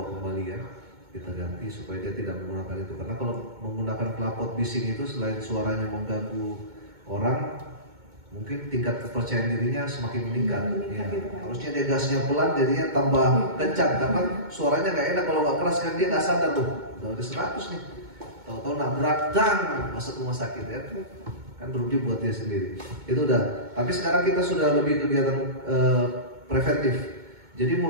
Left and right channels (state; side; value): late; left; 2.2 ms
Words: kembali ya. Kita ganti supaya dia tidak menggunakan itu, karena kalau menggunakan knalpot bising itu selain suaranya mengganggu orang, mungkin tingkat kepercayaan dirinya semakin meningkat. Ya. Harusnya dia gasnya pelan, jadinya tambah kencang karena suaranya nggak enak kalau nggak keras kan, dia nggak sadar tuh udah 100 nih, tahu-tahu nabrak dang masuk rumah sakit ya, kan rugi buat dia sendiri. Itu udah. Tapi sekarang kita sudah lebih kegiatan preventif. Jadi